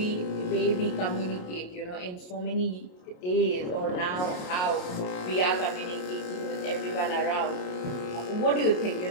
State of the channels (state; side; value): late; right; 28 ms